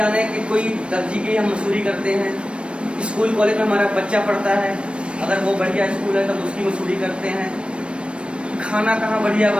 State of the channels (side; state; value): left; late; 0.058 ms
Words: कि कोई दर्जी की हम मजदूरी करते हैं, स्कूल कॉलेज में हमारा बच्चा पढ़ता है, अगर वो बढ़िया स्कूल है तो उसकी मजदूरी करते हैं। खाना कहाँ बढ़िया